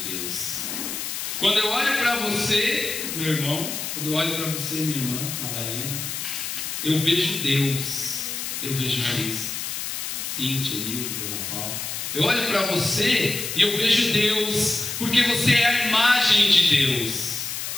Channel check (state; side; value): noise; left; hiss, 5 dB below the sound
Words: Deus. Quando eu olho para você, meu irmão, quando eu olho para você, minha irmã, Madalena, eu vejo Deus, eu vejo Cristo. Cíntia, Nildo, Dona Paula. Eu olho para você e eu vejo Deus, porque você é a imagem de Deus.